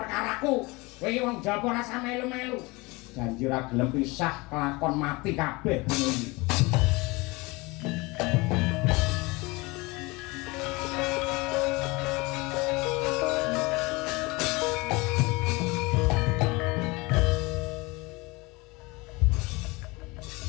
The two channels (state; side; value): quieter; right; 24.4 dB